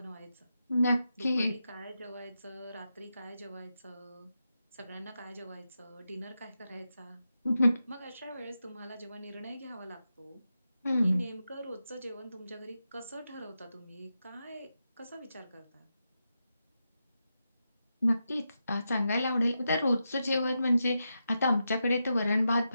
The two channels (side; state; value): both; inverted; correlation -0.88